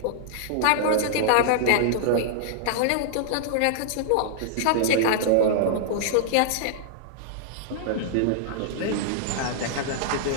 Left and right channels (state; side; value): different; both; correlation -0.01